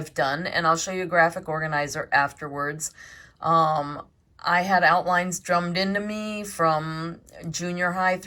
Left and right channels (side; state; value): both; identical; correlation 1.00